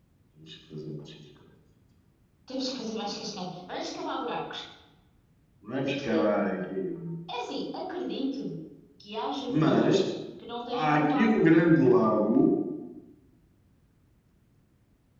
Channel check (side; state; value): both; identical; correlation 1.00